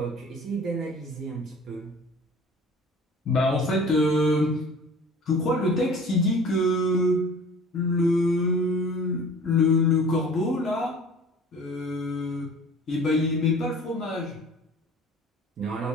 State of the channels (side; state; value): both; normal; correlation 0.45